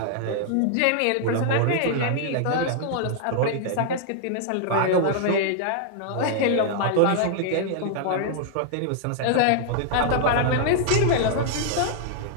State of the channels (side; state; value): both; different; correlation -0.01